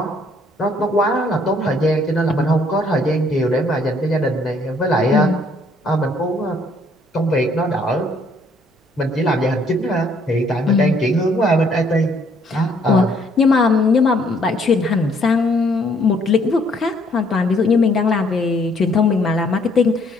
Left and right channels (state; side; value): normal; both; correlation 0.65